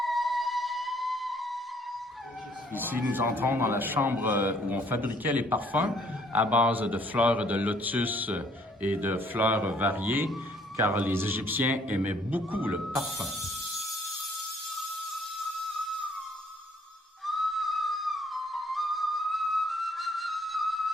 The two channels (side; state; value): both; normal; correlation 0.63